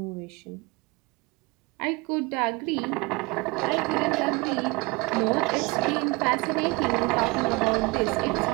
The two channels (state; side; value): quieter; left; 26.0 dB